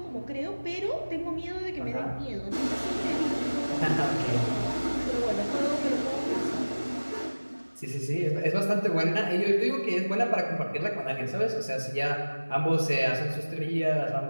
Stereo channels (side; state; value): both; inverted; correlation -1.00